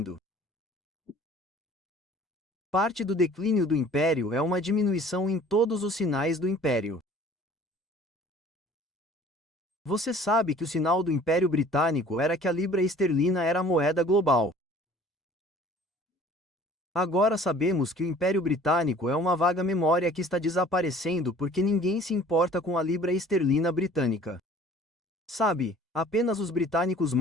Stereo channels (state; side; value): normal; both; correlation 0.50